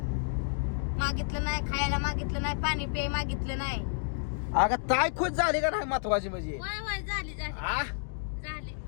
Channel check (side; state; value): right; silent; digital silence